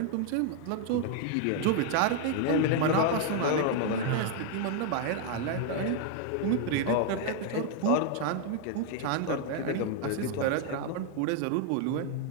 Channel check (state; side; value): different; both; correlation 0.00